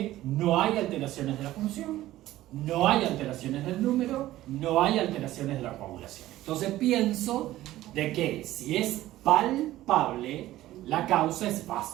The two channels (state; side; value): quieter; left; 15.2 dB